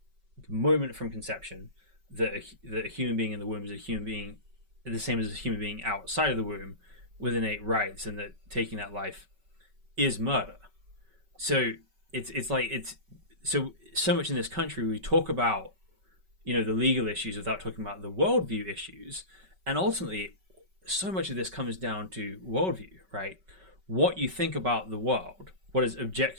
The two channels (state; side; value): late; left; 5.3 ms